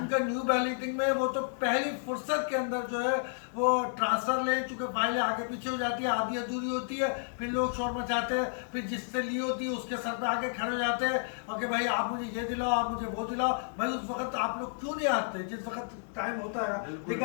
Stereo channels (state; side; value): silent; right; digital silence